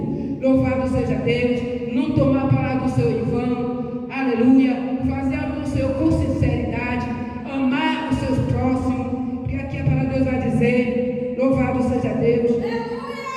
Louvado seja Deus. Não tomar a palavra do Senhor em vão. Aleluia. Fazer algo no Senhor com sinceridade. Amar os seus próximos. Porque aqui a palavra de Deus vai dizer, louvado seja Deus.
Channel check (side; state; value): both; identical; correlation 1.00